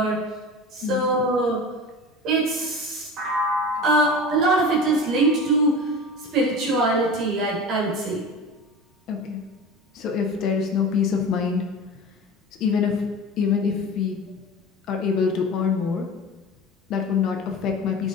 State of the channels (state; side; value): normal; both; correlation 0.32